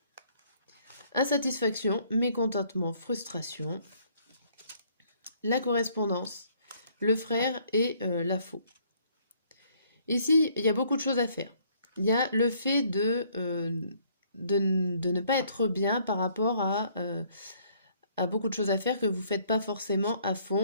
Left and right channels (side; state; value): both; inverted; correlation -0.64